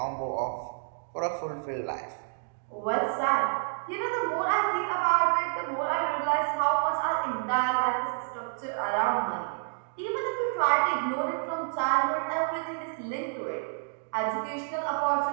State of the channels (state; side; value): silent; left; digital silence